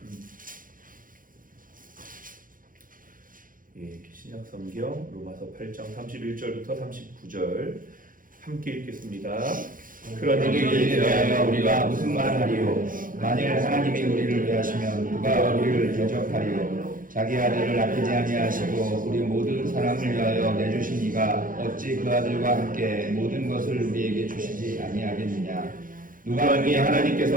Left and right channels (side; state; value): left; late; 0.40 ms